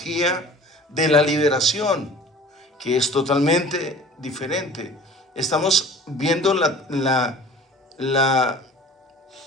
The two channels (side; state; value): both; normal; correlation 0.44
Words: de la liberación, que es totalmente diferente. Estamos viendo